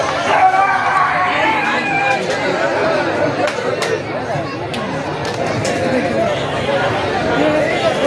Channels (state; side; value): identical; both; correlation 1.00